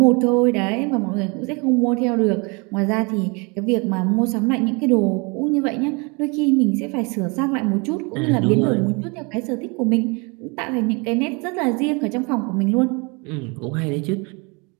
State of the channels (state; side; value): quieter; left; 30.2 dB